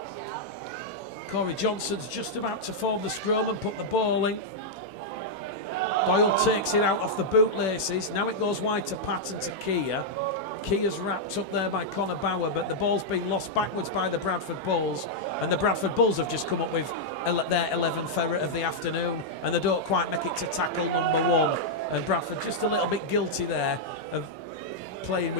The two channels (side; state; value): right; late; 16 ms